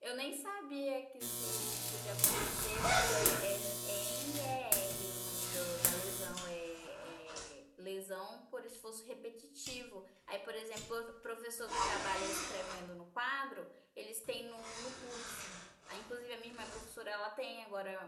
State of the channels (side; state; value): both; identical; correlation 1.00